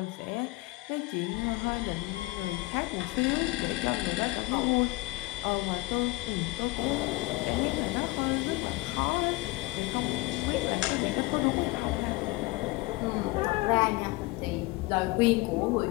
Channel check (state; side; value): quieter; right; 21.6 dB